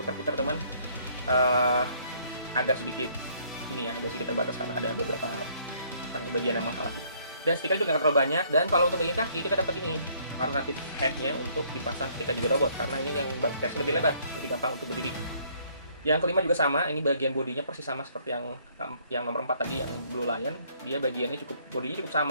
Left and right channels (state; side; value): inverted; both; correlation -0.64